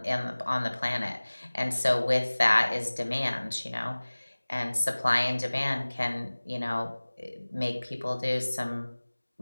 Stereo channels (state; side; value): inverted; both; correlation -1.00